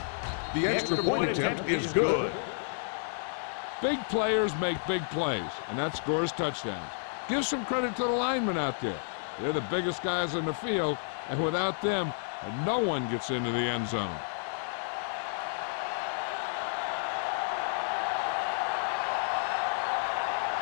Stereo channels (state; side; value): silent; right; 57 dB below the other